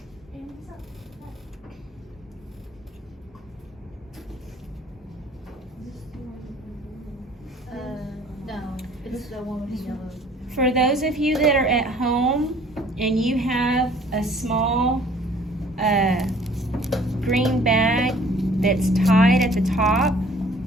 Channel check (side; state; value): both; normal; correlation 0.54